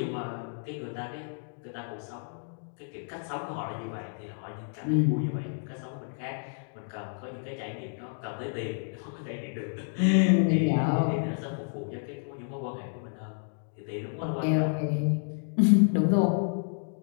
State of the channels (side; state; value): right; silent; digital silence